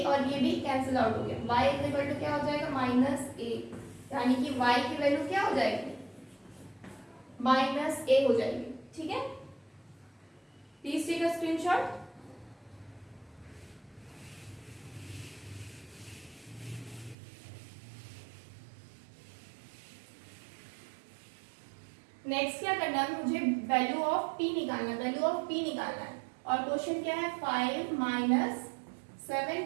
और ये b कैंसिल आउट हो गया, y इज इक्वल टू क्या हो जाएगा माइनस a, यानी कि y की वैल्यू क्या हो जाएगी माइनस a हो जाएगी, ठीक है। Please take a screenshot. Next क्या करना है, मुझे वैल्यू ऑफ p निकालना है, वैल्यू ऑफ p निकालना है। और क्वेश्चन क्या है, 5 minus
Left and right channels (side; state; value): left; drops out; at 17.2 s